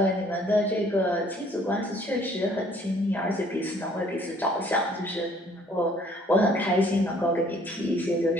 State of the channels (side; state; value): both; normal; correlation 0.59